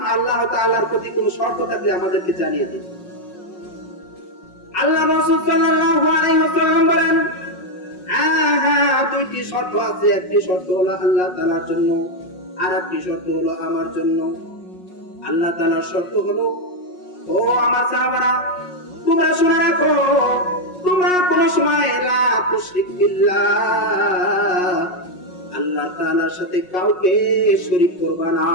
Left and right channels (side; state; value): right; late; 5.5 ms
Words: আল্লাহ তাআলার প্রতি কোনো শর্ত থাকলে আমাদেরকে জানিয়ে দিন। আল্লাহ রাসূল সাল্লাল্লাহু আলাইহি ওয়াসাল্লাম বলেন, হ্যাঁ, দুইটি শর্ত আছে। একটি শর্ত হলো আল্লাহ তাআলার জন্য, আর একটি শর্ত হলো আমার জন্য। আল্লাহ তাআলার শর্ত হলো, ও আমার সাহাবারা, তোমরা শুনে রাখো, তোমরা কোন সময় লা তুশরিক বিল্লাহ, আল্লাহ তাআলার সাথে কাউকে শরীক করবা না।